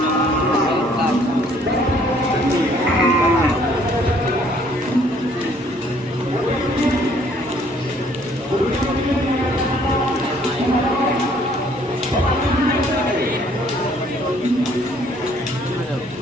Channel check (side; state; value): both; normal; correlation 0.61